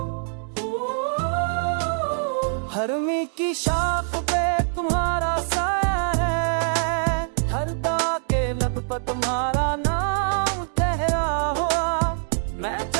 हरमी की शाख पे तुम्हारा साया है, हर दाग के लब पर तुम्हारा नाम ठहरा हुआ। मैं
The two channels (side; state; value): left; silent; digital silence